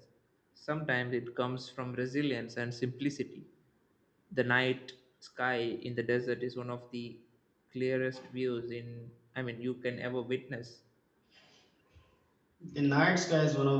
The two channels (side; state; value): both; identical; correlation 1.00